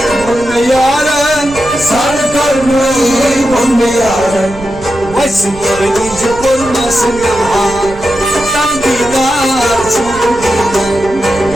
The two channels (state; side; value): noise; right; rumble, 15 dB below the sound